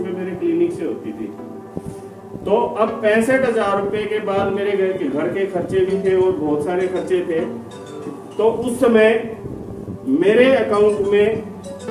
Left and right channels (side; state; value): both; identical; correlation 1.00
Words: मेरे क्लिनिक से होती थी। तो अब 65,000 रुपए के बाद मेरे घर के खर्चे भी थे और बहुत सारे खर्चे थे। तो उस समय मेरे अकाउंट में